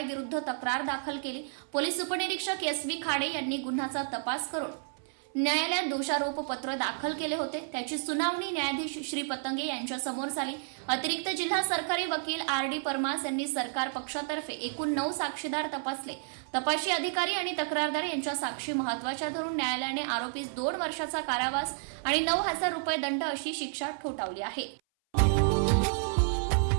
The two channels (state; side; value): silent; left; 57 dB below the other